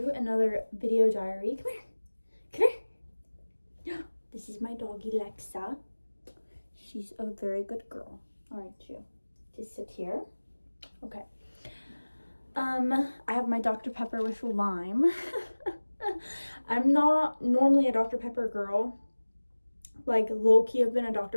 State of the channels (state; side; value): inverted; both; correlation -1.00